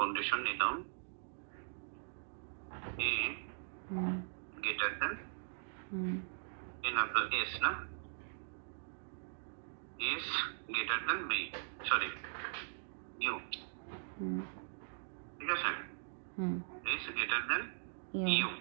কন্ডিশন নিলাম এ গ্রেটার দেন এন আপনার এস না, S greater than B, sorry U. ঠিক আছে, এস গ্রেটার দেন ইউ।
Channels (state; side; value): silent; left; digital silence